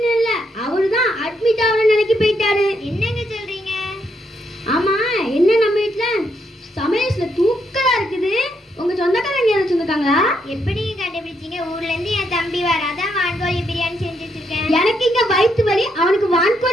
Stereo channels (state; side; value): normal; both; correlation 0.77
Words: இல்ல, அவருதான் அட்மிட் ஆகணும் நினைக்கி போயிட்டாரு. என்னங்க சொல்றீங்க? ஆமா, என்ன நம்ம வீட்டுல சமையல்ல தூக்கலா இருக்குது. உங்க சொந்தக்காரங்க யாரும் சொந்தக்காங்களா? எப்படி கண்டுபிடிச்சீங்க? ஊர்ல இருந்து என் தம்பி வர, அதான் வான்கோழி பிரியாணி செஞ்சு வச்சிருக்கேன். எனக்கு இங்க வயிற்று வலி, அவனுக்கு